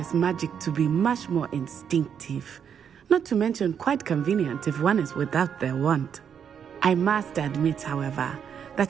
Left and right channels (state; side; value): quieter; left; 7.9 dB